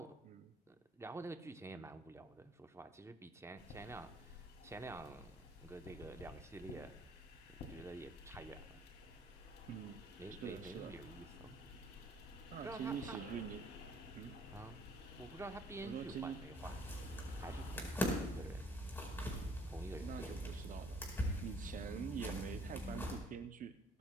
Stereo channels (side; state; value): both; normal; correlation 0.61